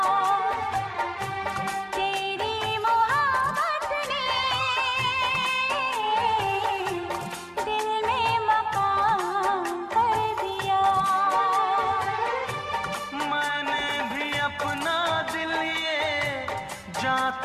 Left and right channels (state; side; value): identical; both; correlation 1.00